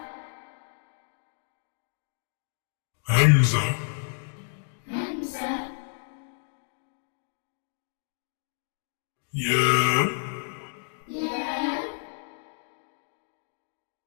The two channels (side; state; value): right; silent; digital silence